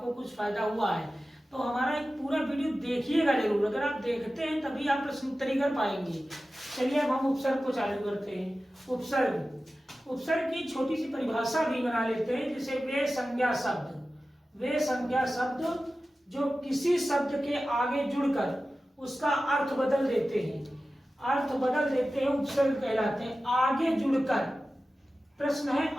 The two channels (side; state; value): both; normal; correlation 0.95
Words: कुछ फायदा हुआ है। तो हमारा एक पूरा वीडियो देखिएगा जरूर, अगर आप देखते हैं तभी आप प्रश्न उत्तरी कर पाएंगे। चलिए अब हम उपसर्ग को चालू करते हैं। उपसर्ग की छोटी सी परिभाषा भी बना लेते हैं, जैसे वे संज्ञा शब्द जो किसी शब्द के आगे जुड़कर उसका अर्थ बदल देते हैं, उपसर्ग कहलाते हैं। आगे जुड़कर, प्रश्न है